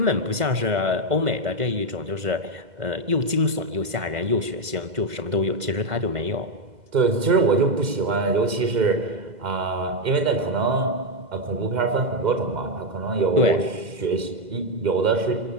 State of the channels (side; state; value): left; late; 2.0 ms